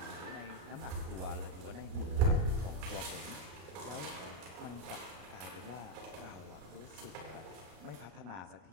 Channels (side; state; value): left; late; 33 ms